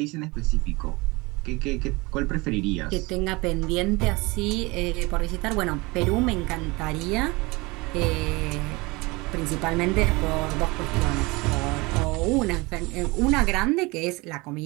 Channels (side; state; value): left; quieter; 24.3 dB